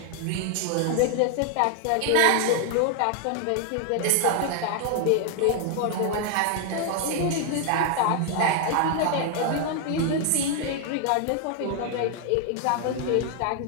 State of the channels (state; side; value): different; both; correlation 0.00